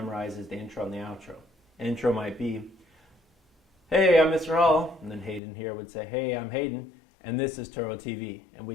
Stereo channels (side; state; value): right; drops out; at 5.4 s